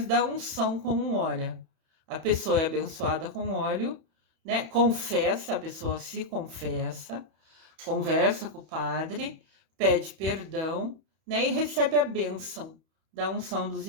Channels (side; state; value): left; late; 31 ms